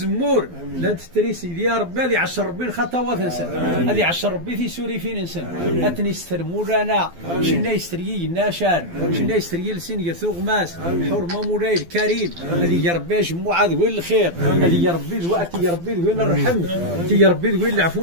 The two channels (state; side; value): late; left; 12 ms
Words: لا تتريسي يا ربي هذه 10 ربي الخطوات نسن هذه 10 ربي في سوري فين نسن أتنسترمو لنا شنا يستريي الناشان شنا يستريي لسين يثوغ ماس الحرمة مولاي الكريم هذه يا ربي جمعة ذوين الخير هذه يا ربي ذواتي يا ربي ذوين الرحم يا ربي ذوين